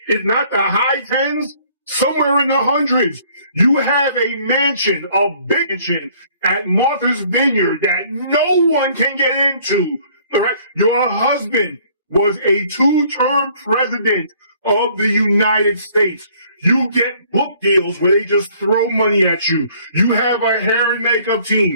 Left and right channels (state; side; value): inverted; both; correlation -0.59